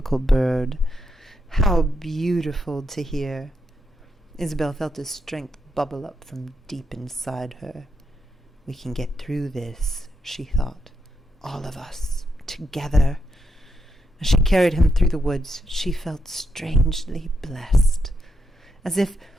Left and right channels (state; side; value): normal; both; correlation 0.82